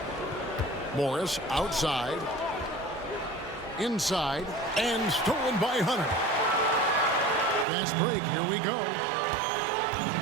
Morris outside. Inside. And stolen by Hunter. Fast break, here we go.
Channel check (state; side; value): drops out; left; at 7.7 s